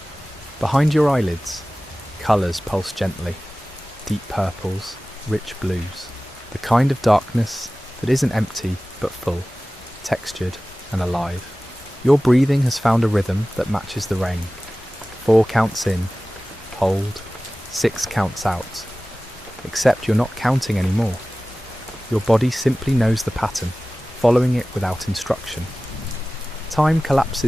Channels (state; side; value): normal; both; correlation 0.97